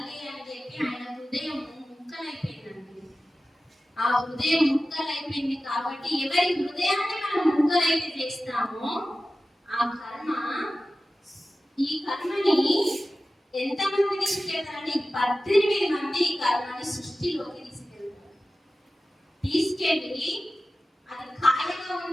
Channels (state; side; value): normal; both; correlation 0.95